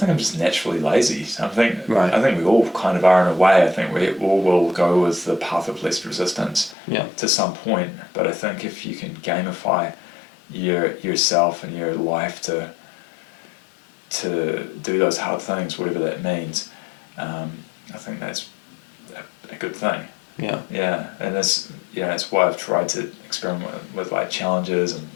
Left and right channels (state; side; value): drops out; right; at 6.8 s